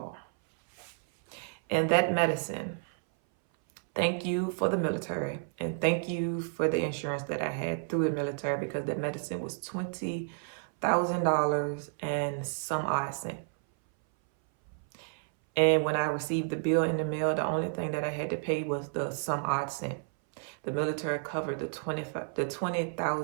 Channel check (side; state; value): left; silent; 57 dB below the other